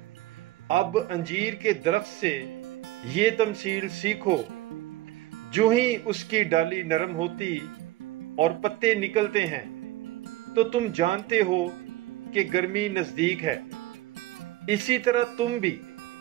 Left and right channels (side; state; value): left; quieter; 16.2 dB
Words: अब अंजीर के दरख्त से ये तमसील सीखो, जो ही उसकी डाली नरम होती और पत्ते निकलते हैं तो तुम जानते हो कि गर्मी नजदीक है। इसी तरह तुम भी